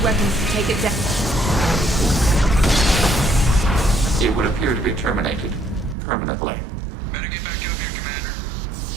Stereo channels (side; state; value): left; drops out; at 6.0 s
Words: to take it down. It would appear to be terminated permanently. Better get back up here, Commander.